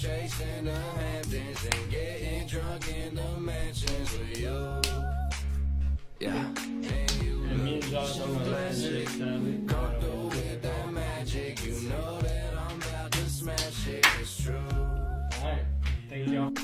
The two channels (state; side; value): identical; both; correlation 1.00